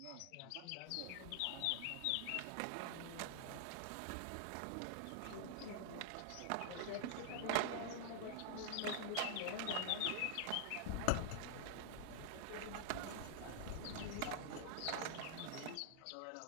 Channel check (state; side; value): different; both; correlation -0.01